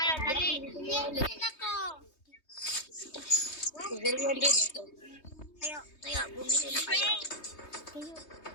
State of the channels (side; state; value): right; late; 3.2 ms